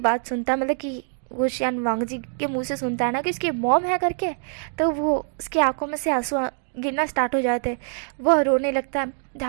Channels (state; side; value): silent; left; digital silence